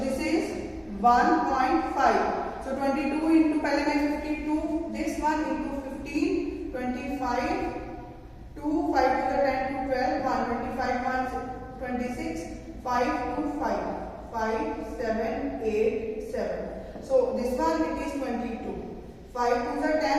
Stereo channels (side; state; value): both; identical; correlation 1.00